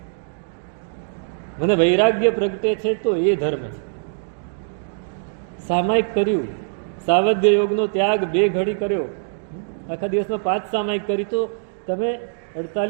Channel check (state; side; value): silent; left; digital silence